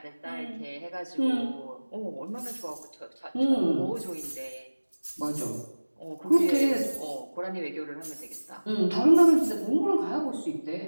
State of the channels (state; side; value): inverted; both; correlation -1.00